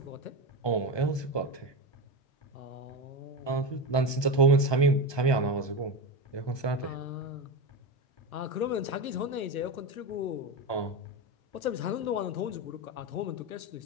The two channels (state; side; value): late; right; 1.2 ms